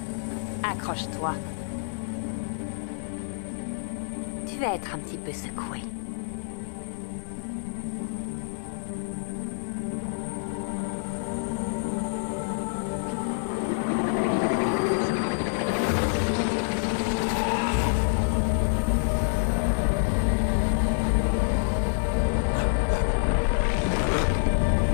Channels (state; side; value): silent; right; digital silence